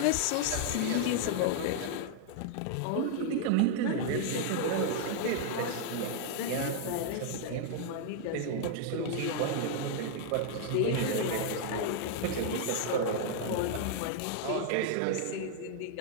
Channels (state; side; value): different; both; correlation -0.01